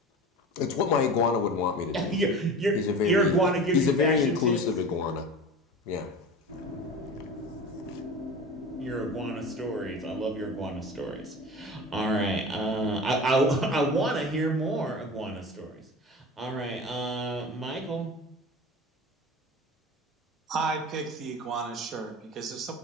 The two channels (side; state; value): both; normal; correlation 0.34